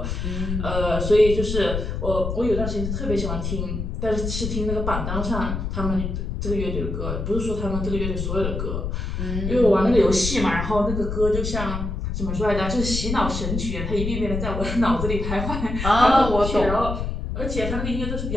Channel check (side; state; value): left; noise; rumble, 3 dB below the sound